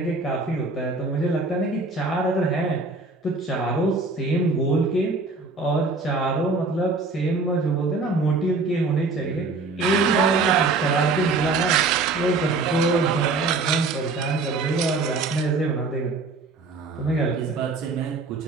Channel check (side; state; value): left; quieter; 3.7 dB